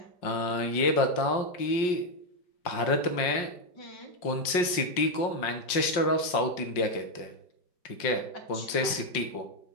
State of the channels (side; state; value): right; late; 5.6 ms